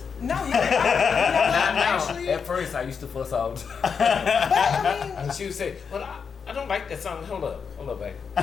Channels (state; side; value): quieter; right; 6.1 dB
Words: No, Actually, at first I used to fuss out. But I mean, And she would say, well, I don't like that song. Hold up, babe.